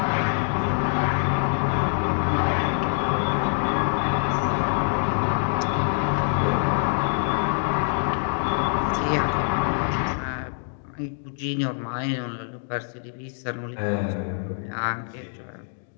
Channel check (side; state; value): right; silent; 62 dB below the other